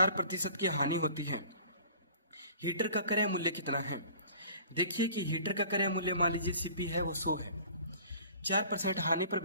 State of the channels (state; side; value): inverted; both; correlation -0.48